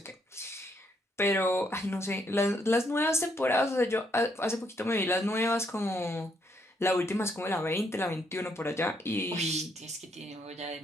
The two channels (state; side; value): normal; both; correlation 0.73